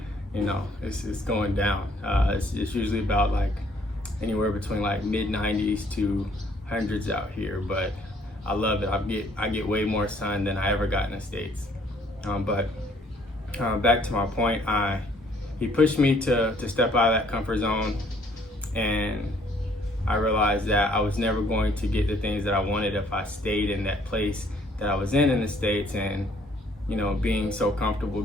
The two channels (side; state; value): both; normal; correlation 0.62